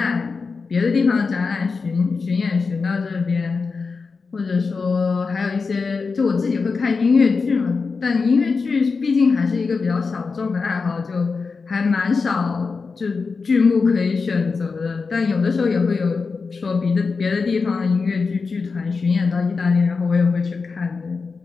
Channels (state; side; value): quieter; right; 4.7 dB